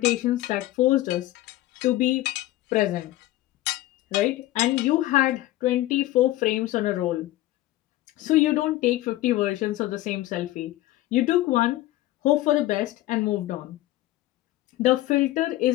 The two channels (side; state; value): right; quieter; 16.1 dB